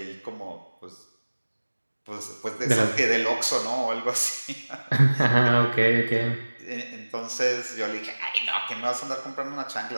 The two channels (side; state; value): both; inverted; correlation -1.00